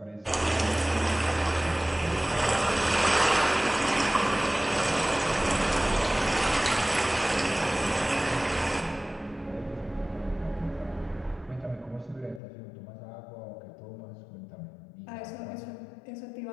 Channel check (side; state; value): right; drops out; at 12.4 s